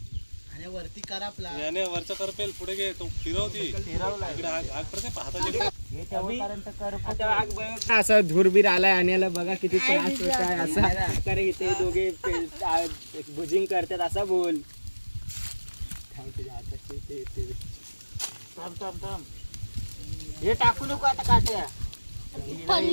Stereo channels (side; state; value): both; inverted; correlation -1.00